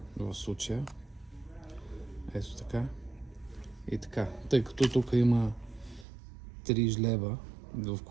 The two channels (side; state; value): left; drops out; at 6.1 s